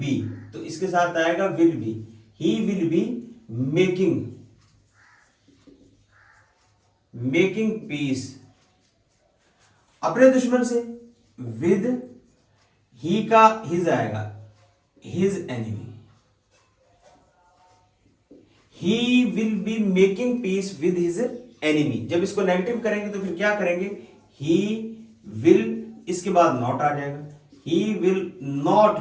तो इसके साथ आएगा will be. He will be making, making piece अपने दुश्मन से, विद ही का हिज आएगा, his enemy. He will be making peace with his enemy। जब इसको नेगेटिव करेंगे तो फिर क्या करेंगे, he will, इसके बाद नॉट आ जाएगा, he will not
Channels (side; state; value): both; identical; correlation 1.00